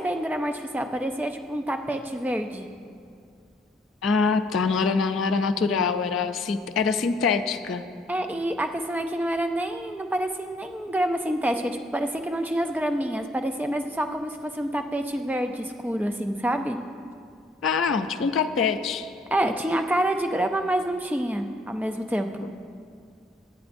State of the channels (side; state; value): both; normal; correlation 0.67